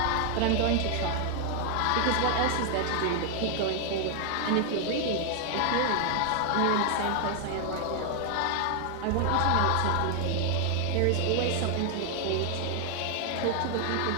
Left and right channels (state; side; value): different; both; correlation 0.00